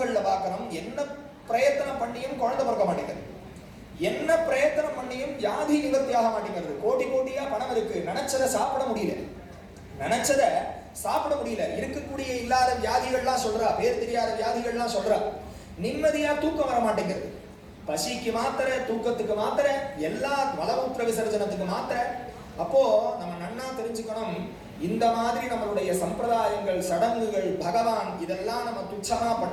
பார்க்கணும், என்ன பிரயத்தனம் பண்ணியும் குழந்தை பிறக்க மாட்டேங்குது, என்ன பிரயத்தனம் பண்ணியும் வியாதி நிவர்த்தி ஆக மாட்டேங்கிறது. கோடி கோடியா பணம் இருக்கு, நினைச்சதை சாப்பிட முடியல, நினைச்சதை சாப்பிட முடியல. இருக்கக்கூடிய இல்லாத வியாதிகள்லாம் சொல்றா, பேர் தெரியாத வியாதிகள்லாம் சொல்றா. நிம்மதியா தூக்கம் வர மாட்டேங்கிறது. பசிக்கு மாத்திரை, தூக்கத்துக்கு மாத்திரை, எல்லா மலமூத்திர விசர்ஜனத்துக்கு மாத்திரை. அப்போ நம்ம நன்னா தெரிஞ்சுக்கணும், இந்த மாதிரி நம்மளுடைய சம்பிரதாயங்கள், சடங்குகள், பகவான் இதெல்லாம் நம்ம துச்சமா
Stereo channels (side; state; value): both; identical; correlation 1.00